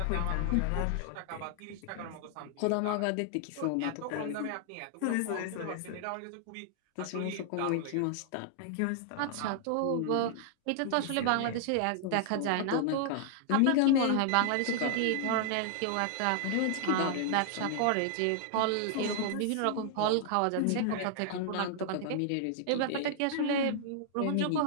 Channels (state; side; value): different; both; correlation -0.01